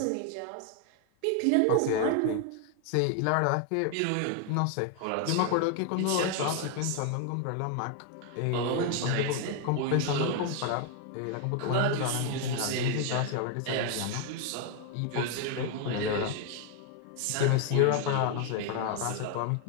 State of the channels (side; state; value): both; different; correlation 0.00